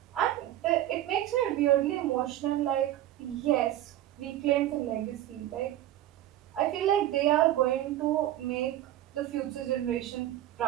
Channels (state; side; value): quieter; left; 13.4 dB